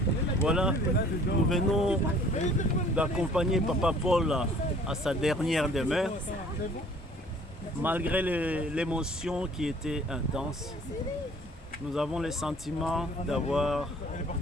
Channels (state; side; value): normal; both; correlation 0.53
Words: Voilà, nous venons d'accompagner Papa Paul à sa dernière demeure. Malgré l'émotion qui était intense, nous avons le sentiment d'avoir